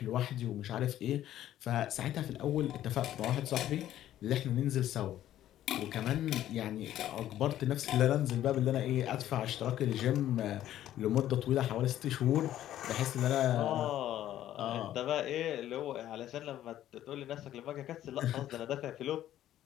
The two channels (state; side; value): quieter; right; 12.5 dB